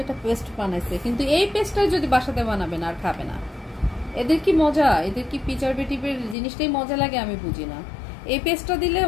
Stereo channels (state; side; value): drops out; right; at 6.4 s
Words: একটা পেস্ট বানাইছে। কিন্তু এই পেস্টটাই যদি বাসাতে বানাবেন আর খাবে না। এদের কি মজা, এদের কি পিচার বেটিপের জিনিসটাই মজা লাগে, আমি বুঝি না। এই পেস্টটা দিলে